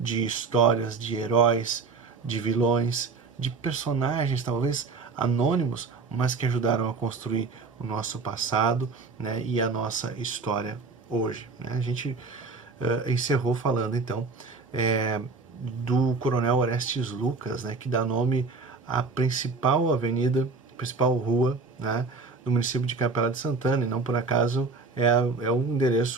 histórias, de heróis, de vilões, de personagens talvez anônimos, mas que ajudaram a construir o nosso passado, né, e a nossa história hoje. Né? A gente encerrou falando então do Coronel Orestes Lucas, né, que dá nome à principal avenida, principal rua, né, do município de Capela de Santana, e não por acaso é o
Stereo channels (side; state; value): left; quieter; 4.3 dB